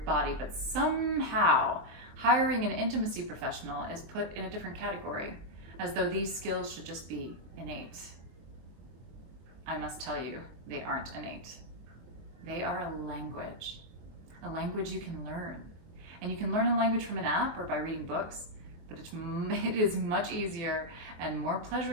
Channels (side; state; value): left; late; 24 ms